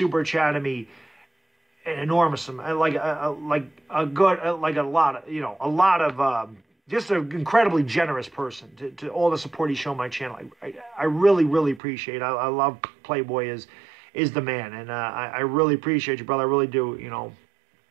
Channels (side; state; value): left; drops out; at 11.8 s